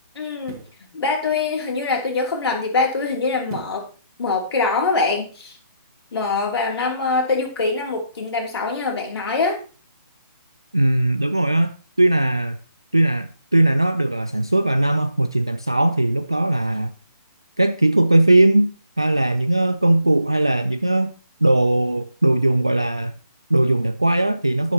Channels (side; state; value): both; inverted; correlation -0.81